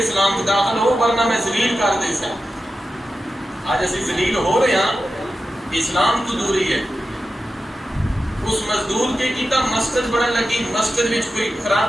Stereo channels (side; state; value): both; normal; correlation 0.91